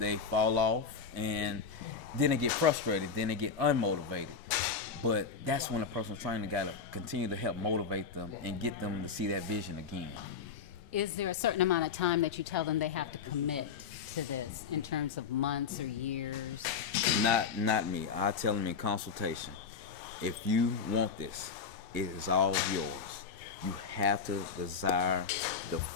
fall off, and then they get frustrated, then they get unmotivated. But that's when a personal trainer got to continue to help motivate them and get them to see that vision again. Is there a certain amount of time that you tell them they have to commit to this in terms of months or years? Not me. I tell them in consultation, if you want this, it is all yours. You have to desire the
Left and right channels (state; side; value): quieter; right; 5.8 dB